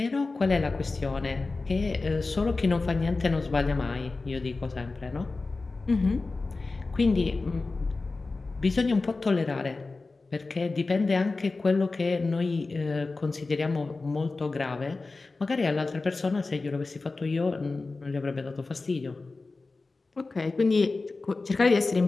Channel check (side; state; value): right; quieter; 3.6 dB